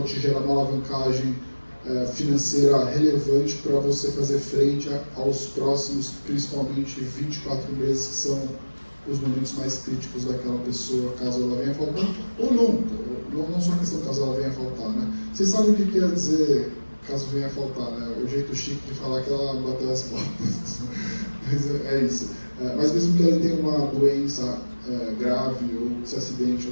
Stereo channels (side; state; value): both; inverted; correlation -1.00